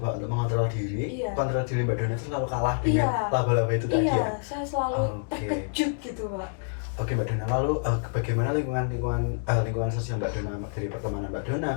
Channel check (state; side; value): silent; right; digital silence